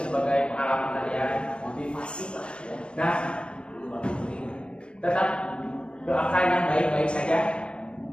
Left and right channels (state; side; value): late; right; 0.055 ms